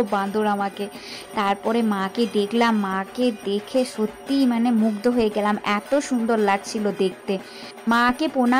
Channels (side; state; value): both; identical; correlation 1.00